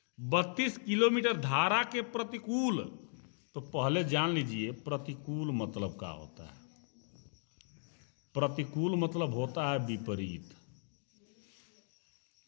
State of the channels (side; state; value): right; silent; digital silence